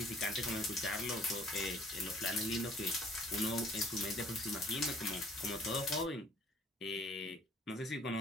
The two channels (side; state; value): both; normal; correlation 0.56